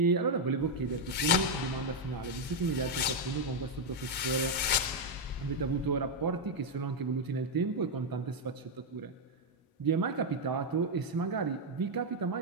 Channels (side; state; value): both; normal; correlation 0.01